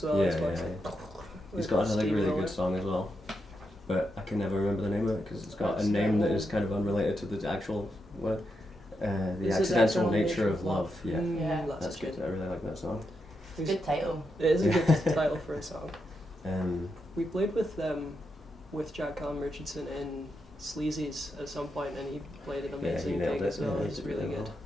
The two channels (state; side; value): normal; both; correlation 0.84